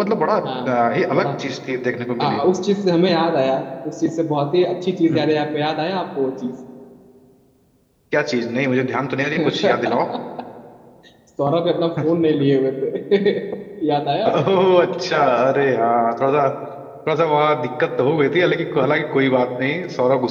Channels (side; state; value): both; identical; correlation 1.00